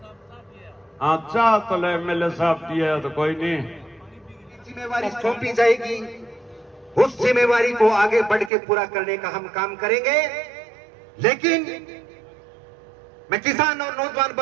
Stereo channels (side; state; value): left; drops out; at 8.5 s